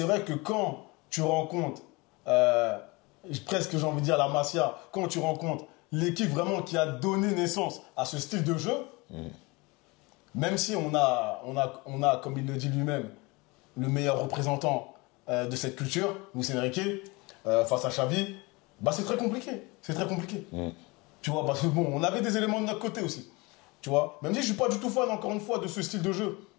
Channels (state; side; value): quieter; right; 25.3 dB